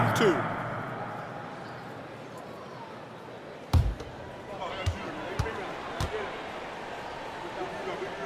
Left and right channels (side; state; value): both; identical; correlation 1.00